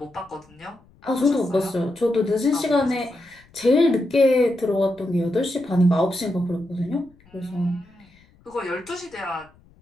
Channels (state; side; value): noise; left; rumble, 29 dB below the sound